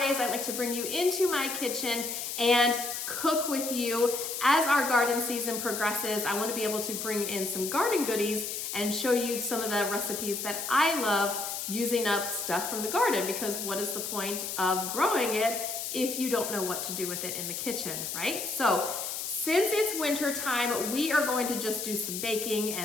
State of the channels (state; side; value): noise; left; hiss, 4 dB below the sound